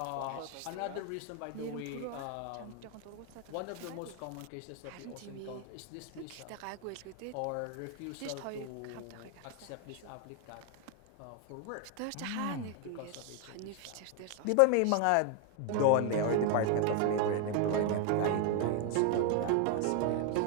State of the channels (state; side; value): different; both; correlation 0.01